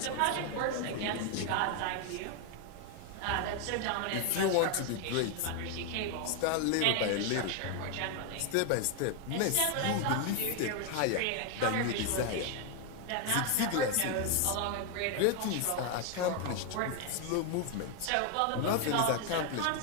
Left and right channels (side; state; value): both; different; correlation 0.01